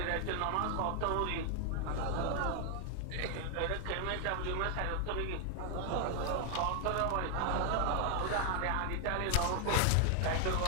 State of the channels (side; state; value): both; different; correlation 0.00